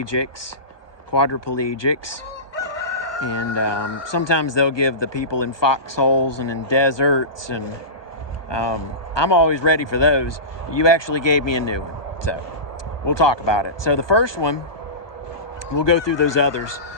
quadriplegics. And sometimes they'll give the people in foxholes and in deserts. And I'm always ready for those. You actually gave me a new one. So we'll talk about it. So the first one, we'll go through those others.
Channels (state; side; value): late; right; 1.2 ms